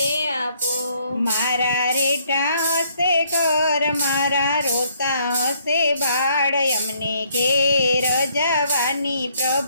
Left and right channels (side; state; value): both; inverted; correlation -0.67